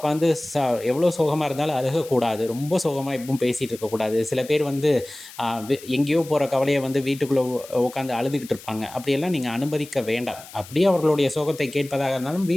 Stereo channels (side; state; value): left; noise; hiss, 18 dB below the sound